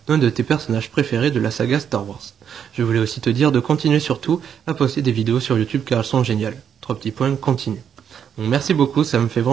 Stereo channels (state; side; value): quieter; left; 8.3 dB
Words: d'un de tes personnages préférés de la saga Star Wars. Je voulais aussi te dire de continuer surtout à poster des vidéos sur YouTube car elles sont géniales. 3 petits points, continue. Donc, merci beaucoup, ça me fait